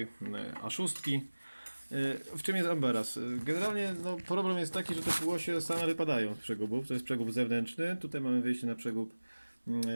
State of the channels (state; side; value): inverted; both; correlation -1.00